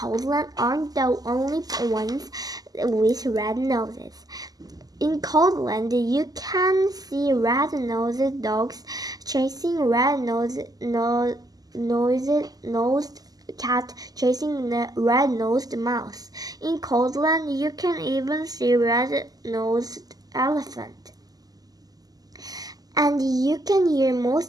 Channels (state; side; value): late; left; 0.18 ms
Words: aren't the only ones with red noses. In Coldland, you can see red-nosed dogs chasing red-nosed cat chasing the red-nosed mouse. In Coldland, you can even see red-nosed elephant. And you can hear